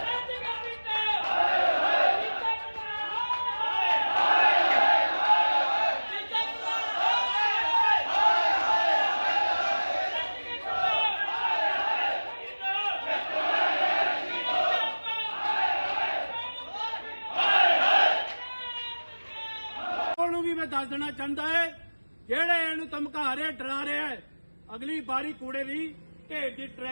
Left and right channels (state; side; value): inverted; both; correlation -1.00